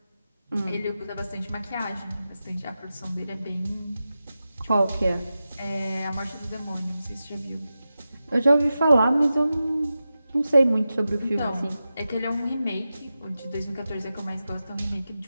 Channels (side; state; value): both; inverted; correlation -0.92